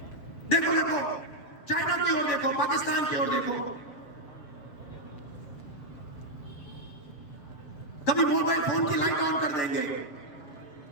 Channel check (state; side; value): late; right; 7.0 ms